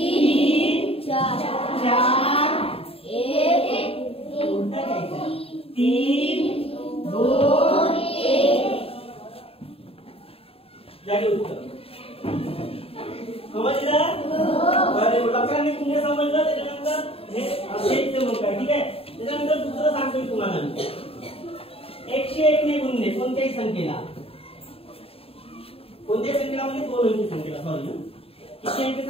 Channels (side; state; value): right; late; 0.28 ms